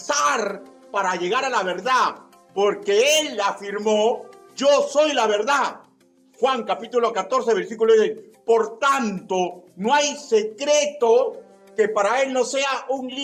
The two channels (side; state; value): both; identical; correlation 1.00